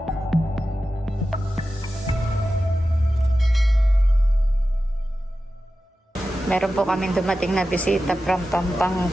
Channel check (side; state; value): both; normal; correlation 0.93